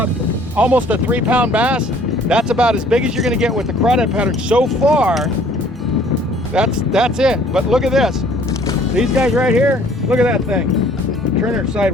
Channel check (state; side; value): normal; both; correlation 0.57